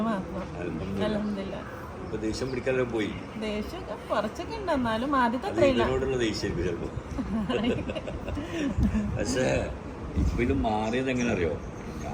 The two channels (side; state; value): both; identical; correlation 1.00